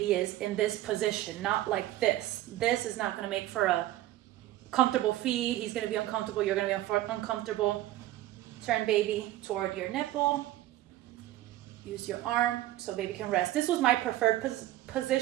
is in this position, not like this. This is not going to make for a comfortable feed. He's going to be uncomfortable. You're going to be uncomfortable. Turn baby toward your nipple. Use your arm so baby can rest. This was my preferred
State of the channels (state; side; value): quieter; left; 14.9 dB